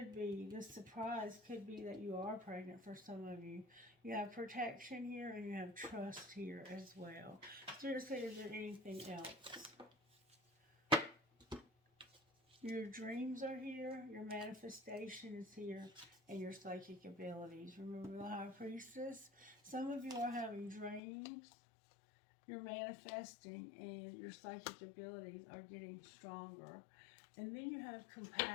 be, this surprise could be that you are pregnant for some of you. You have protection here and you have trust here as well. Seriously, is there anything else? Your dreams are here, your manifestation is here, and your psychic abilities. Remember the High Priestess? Some of you are having dreams, you're manifesting, and your psychic abilities are getting stronger. And then you have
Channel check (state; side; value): drops out; right; at 21.0 s